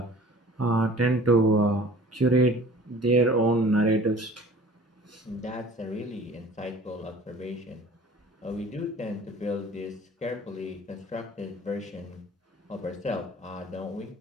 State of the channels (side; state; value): both; normal; correlation 0.47